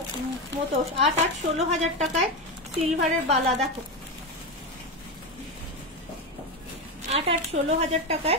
মতো, 16,000 টাকায় সিলভারের বালা। দেখো 16,000 টাকায়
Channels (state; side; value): normal; both; correlation 0.15